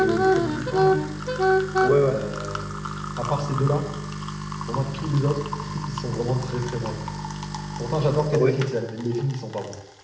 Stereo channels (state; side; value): identical; both; correlation 1.00